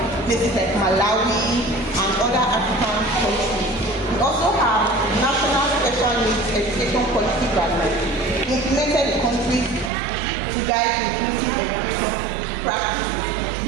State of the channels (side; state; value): left; drops out; at 9.9 s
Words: places like Malawi and other African countries. We also have National Special Needs Education Policy Guidelines implemented in countries to guide inclusive education practices.